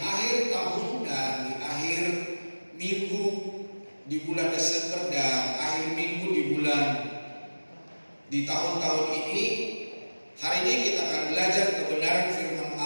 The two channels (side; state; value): both; inverted; correlation -1.00